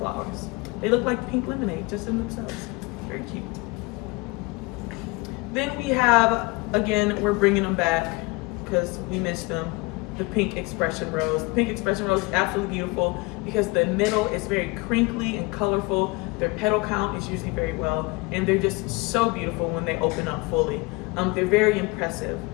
They look like pink lemonade just in themselves. Very cute. Then we have, again, we're bringing them back because we missed them, the pink expression rose. The pink expression rose is absolutely beautiful because the middle is very crinkly and colorful. Their petal count is usually very well, and they're just so beautiful when they open up fully. They're very impressive,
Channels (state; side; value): quieter; right; 25.0 dB